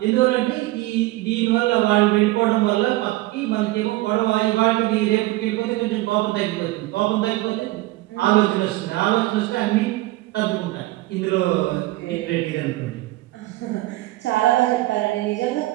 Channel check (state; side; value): quieter; left; 18.5 dB